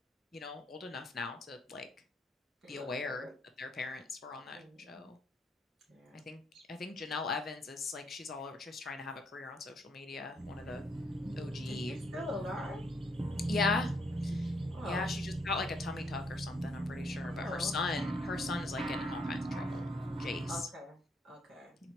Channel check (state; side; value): normal; both; correlation 0.71